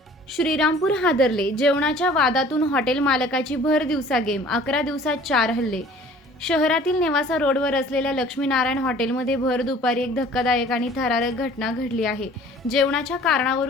श्रीरामपूर हादरले। जेवणाच्या वादातून हॉटेल मालकाची भर दिवसा गेम, 11 दिवसात 4 हल्ले। शहरातील नेवासा रोडवर असलेल्या लक्ष्मीनारायण हॉटेलमध्ये भर दुपारी एक धक्कादायक आणि थरारक घटना घडली आहे। जेवणाच्या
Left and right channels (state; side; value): normal; both; correlation 0.50